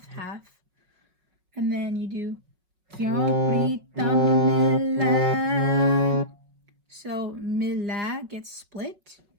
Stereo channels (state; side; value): late; left; 5.4 ms